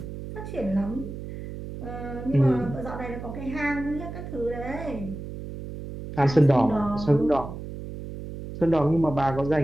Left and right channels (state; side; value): noise; right; hum, 10 dB below the sound